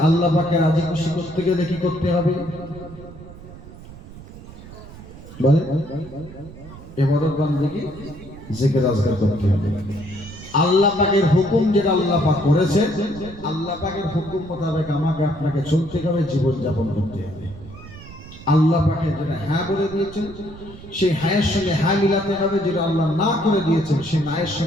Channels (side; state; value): right; noise; rumble, 16 dB below the sound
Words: আল্লাহ পাককে রাজি খুশি করতে গেলে কি করতে হবে? বলে ইবাদত বান্দেগি, জিকির আজকার করতে হবে। আল্লাহ পাকের হুকুম যেটা আল্লাহ পাক করেছেন, আল্লাহ পাকের হুকুম মোতাবেক আমাকে আপনাকে চলতে হবে, জীবন যাপন করতে হবে। আল্লাহ পাকে যেটা হ্যাঁ বলে দিয়েছেন সেই হ্যাঁয়ের সঙ্গে হ্যাঁ মিলাতে হবে, যেটা আল্লাহ না করে দিয়েছেন সেই নায়ের